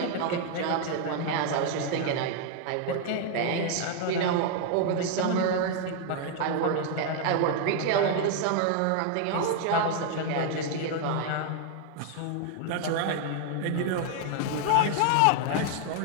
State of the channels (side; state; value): both; different; correlation 0.00